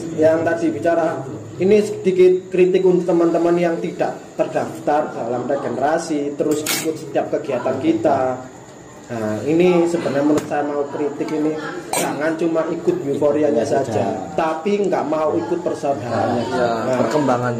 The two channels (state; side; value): identical; both; correlation 1.00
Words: yang tadi bicara ini sedikit kritik untuk teman-teman yang tidak terdaftar dalam regenerasi terus ikut setiap kegiatan kita. Nah, ini sebenarnya menurut saya mau kritik ini jangan cuma ikut euforianya saja, tapi nggak mau ikut persaudaraannya.